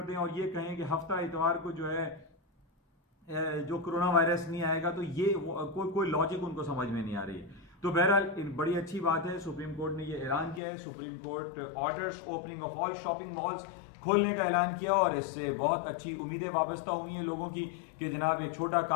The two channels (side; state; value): right; drops out; at 10.6 s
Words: दें और ये कहें कि हफ्ता इतवार को जो है जो कोरोना वायरस नहीं आएगा, तो ये कोई लॉजिक उनको समझ में नहीं आ रही। तो बहरहाल बड़ी अच्छी बात है, सुप्रीम कोर्ट ने ये ऐलान किया है। Supreme court orders opening of all shopping malls खोलने का ऐलान किया, और इससे बहुत अच्छी उम्मीदें वाबस्ता हुई हैं लोगों की कि जनाब एक छोटा